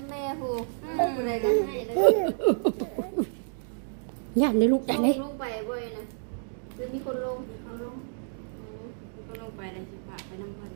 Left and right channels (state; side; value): silent; left; digital silence